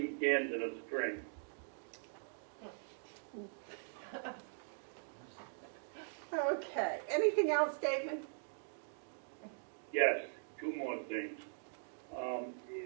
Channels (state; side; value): silent; left; digital silence